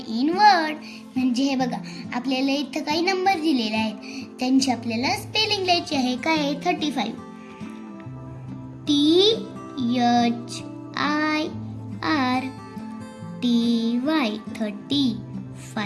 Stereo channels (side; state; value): both; identical; correlation 1.00